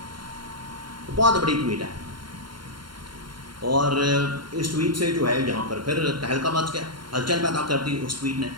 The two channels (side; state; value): left; late; 0.72 ms